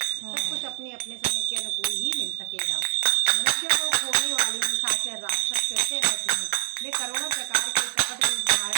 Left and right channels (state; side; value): silent; left; 56 dB below the other